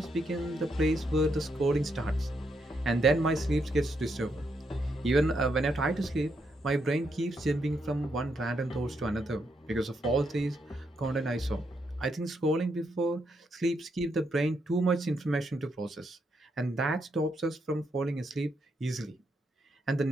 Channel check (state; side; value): normal; both; correlation 0.79